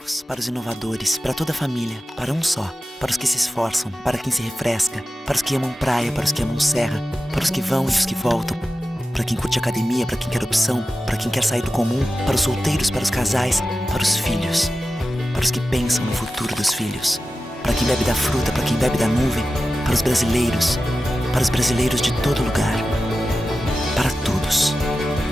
para os inovadores, para toda a família, para um só, para os que se esforçam, para quem se refresca, para os que amam praia, para os que amam serra, para os que vão e os que voltam, para quem curte academia, para quem quer opção, para quem quer sair do comum, para os solteiros, para os casais, para os filhos, para os que pensam no futuro dos filhos, para quem bebe da fruta, para quem bebe da nuvem, para os brasileiros de todo lugar, para todos.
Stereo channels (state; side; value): normal; both; correlation 0.93